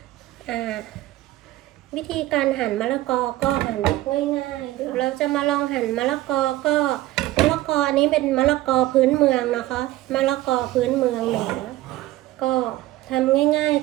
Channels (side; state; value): left; quieter; 16.4 dB